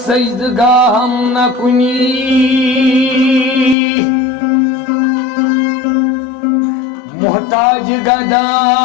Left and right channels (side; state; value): right; drops out; at 3.8 s